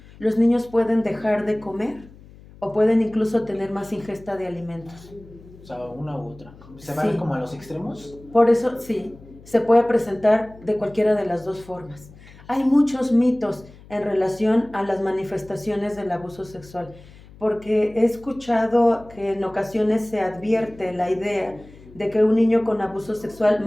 los niños pueden dejar de comer o pueden incluso tener más ingesta de alimentos. O sea, una u otra. ¿Se van como a los extremos? Por eso, sí, se puede presentar de cualquiera de las dos formas. Hay muchos mitos en relación a las manifestaciones del abuso sexual, porque he escuchado que en ocasiones se advierte la idea de que un niño con abuso sexual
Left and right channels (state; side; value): noise; left; hum, 22 dB below the sound